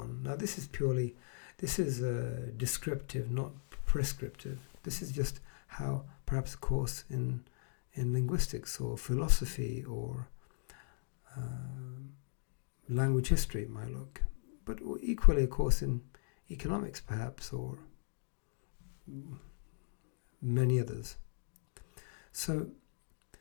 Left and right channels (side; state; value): right; silent; digital silence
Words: Now this is descriptive, not prescriptive. This is just how perhaps a course in linguistics or philosophy or language history might look, but equally a course in economics perhaps, or many others. So